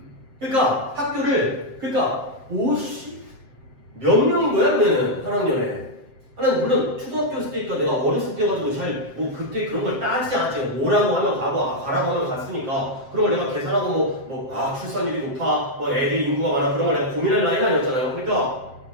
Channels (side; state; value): left; late; 7.6 ms